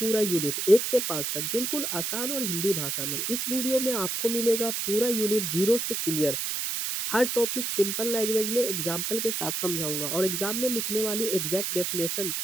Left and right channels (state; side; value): noise; right; hiss, 1 dB below the sound